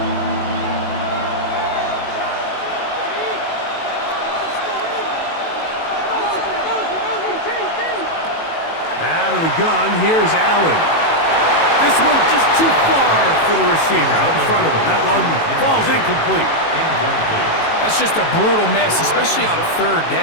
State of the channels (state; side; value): late; right; 18 ms